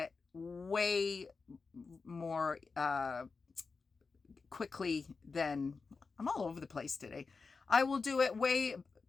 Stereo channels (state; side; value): quieter; right; 4.6 dB